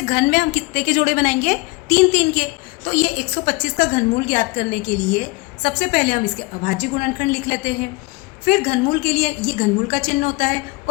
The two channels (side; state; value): right; quieter; 24.7 dB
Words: घन में हम कितने के जोड़े बनाएंगे 3-3 के। तो ये 125 का घनमूल ज्ञात करने के लिए सबसे पहले हम इसके अभाज्य गुणनखंड लिख लेते हैं। फिर घनमूल के लिए ये घनमूल का चिन्ह होता है